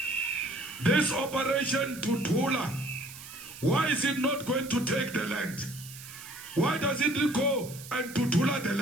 This operation Tutula, why is it not going to take the land? Why does it go and Tutula the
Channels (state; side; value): noise; right; hiss, 15 dB below the sound